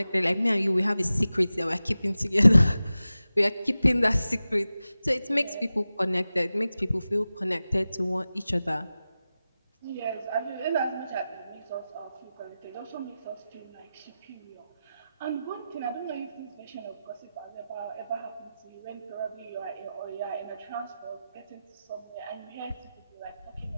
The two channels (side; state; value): both; inverted; correlation -0.94